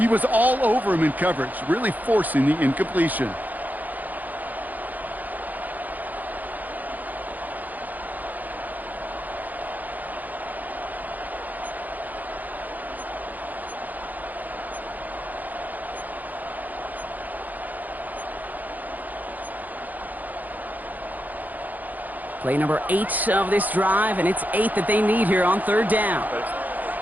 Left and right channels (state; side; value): late; left; 0.082 ms